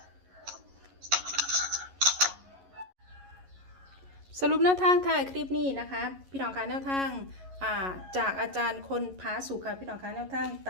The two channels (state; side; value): late; left; 11 ms